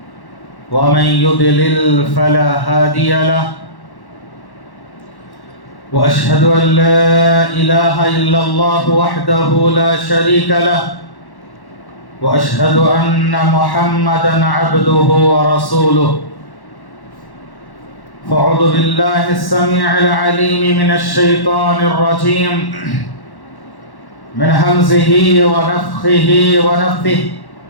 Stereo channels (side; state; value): right; late; 1.1 ms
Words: ومن يضلل فلا هادي له وأشهد أن لا إله إلا الله وحده لا شريك له وأشهد أن محمدًا عبده ورسوله فأعوذ بالله السميع العليم من الشيطان الرجيم من همزه ونفخه ونفثه